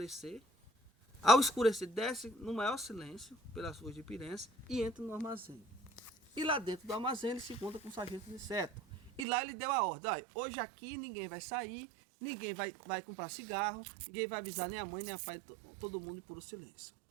Ao escurecer, desce no maior silêncio pelas ruas de Piranhas e entra no armazém. E lá dentro do armazém ele se encontra com o sargento Aniceto. E lá ele deu a ordem: olha, hoje aqui ninguém vai sair, ninguém vai comprar cigarro, ninguém vai avisar nem a mãe nem a pai, todo mundo em puro silêncio.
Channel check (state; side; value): drops out; left; at 9.2 s